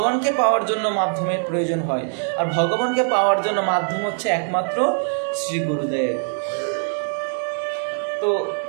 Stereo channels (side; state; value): left; silent; 64 dB below the other